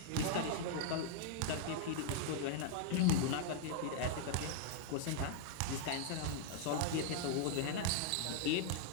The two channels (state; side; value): different; both; correlation 0.00